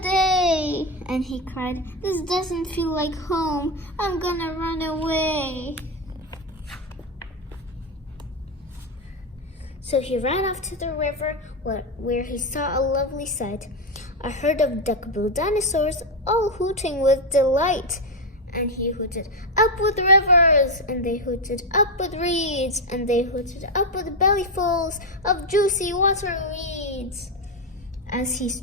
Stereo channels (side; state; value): both; normal; correlation 0.08